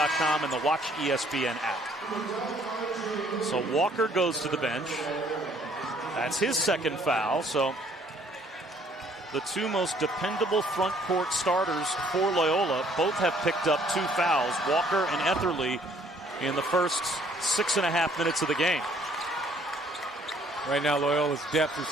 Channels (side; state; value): both; normal; correlation 0.61